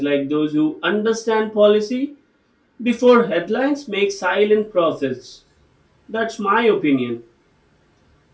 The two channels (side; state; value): both; identical; correlation 1.00